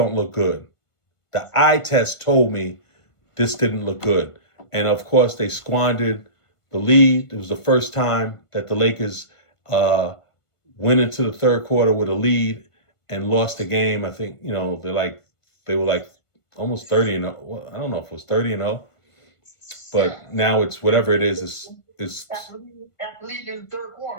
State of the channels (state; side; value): late; right; 1.5 ms